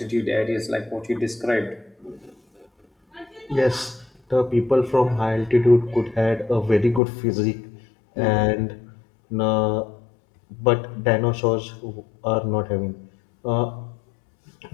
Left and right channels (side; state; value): right; drops out; at 7.0 s